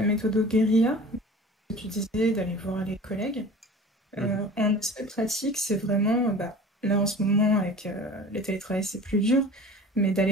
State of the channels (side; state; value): both; normal; correlation 0.40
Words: méthode guérilla, que tu disais d'aller voir les collègues. Mhm. En aspect pratique, c'est vraiment, là en ce moment avec le télétravail c'est plus dur, mais